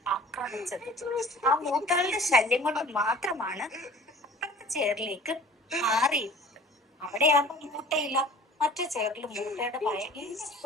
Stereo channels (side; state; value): both; normal; correlation 0.46